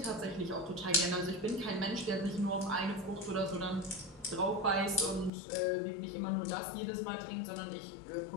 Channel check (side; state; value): right; drops out; at 5.3 s